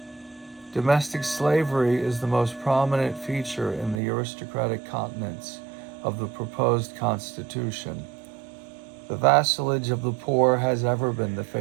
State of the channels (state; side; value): drops out; left; at 4.0 s